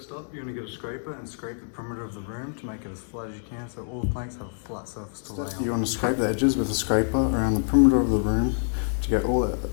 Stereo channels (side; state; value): right; silent; digital silence